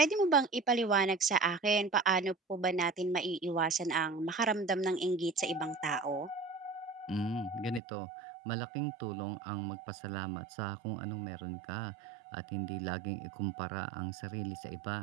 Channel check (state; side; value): drops out; left; at 7.8 s